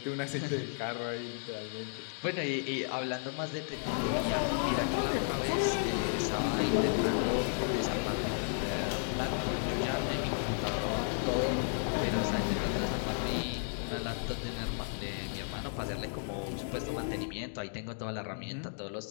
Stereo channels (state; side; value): silent; right; digital silence